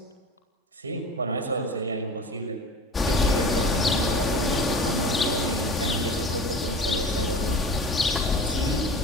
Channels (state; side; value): normal; both; correlation 0.36